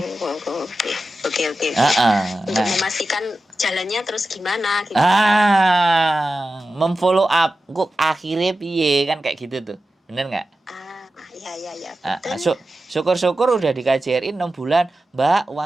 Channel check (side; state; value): both; normal; correlation 0.93